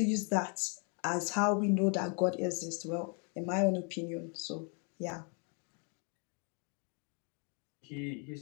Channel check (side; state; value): right; quieter; 38.6 dB